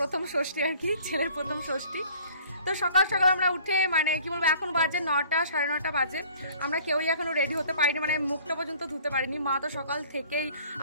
ষষ্ঠী আর কি, ছেলের প্রথম ষষ্ঠী। তো সকাল সকাল আমরা উঠে মানে কি বলবো, এখন বাজে 9টা, 9:30 বাজে। আমরা কেউই এখনো রেডি হতে পারিনি, মানে মুখটা পর্যন্ত ধুতে পারিনি। মা তো সকাল থেকেই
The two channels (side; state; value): both; inverted; correlation -0.53